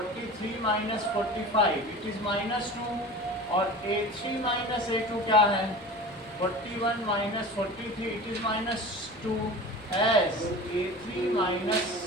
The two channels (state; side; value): noise; left; rumble, 28 dB below the sound